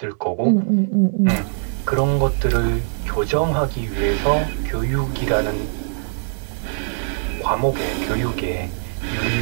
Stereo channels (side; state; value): left; silent; digital silence